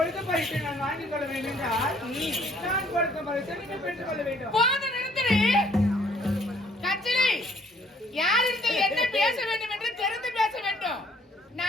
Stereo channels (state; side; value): normal; both; correlation 0.62